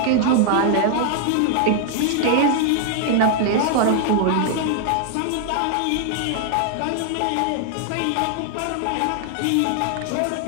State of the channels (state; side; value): different; both; correlation 0.00